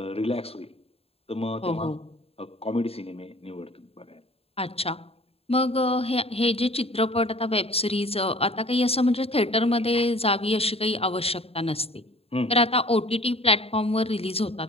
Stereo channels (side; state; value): right; late; 0.28 ms